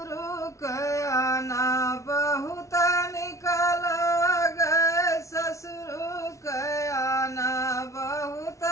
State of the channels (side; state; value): right; late; 0.14 ms